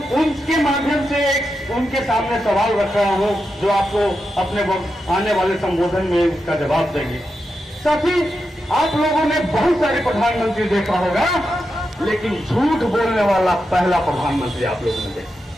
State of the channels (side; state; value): both; normal; correlation 0.87